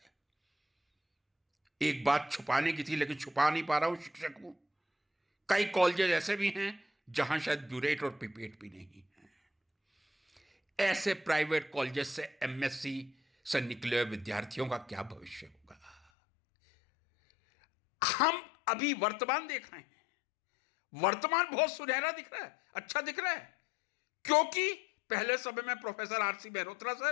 एक बात छुपाने की थी लेकिन छुपा नहीं पा रहा हूं, शिक्षक हूं। कई कॉलेजेस ऐसे भी हैं जहां शायद ब्यूरेट और पिपेट भी नहीं है। ऐसे प्राइवेट कॉलेजेस से एमएससी से निकले हुए विद्यार्थियों का क्या भविष्य होगा? हम अभी वर्तमान देख रहे हैं, वर्तमान बहुत सुनहरा दिख रहा है, अच्छा दिख रहा है, क्योंकि पहले समय में प्रोफेसर आरसी मेहरोत्रा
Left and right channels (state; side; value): drops out; right; at 16.0 s